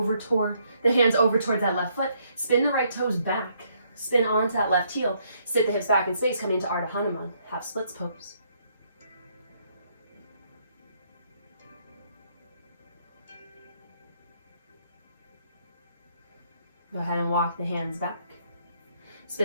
towards that left foot. Spin the right toes back. Spin onto that left heel. Sit the hips back in space, coming to Ardha Hanuman, half splits pose. Go ahead and walk the hands back.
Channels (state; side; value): inverted; both; correlation -0.71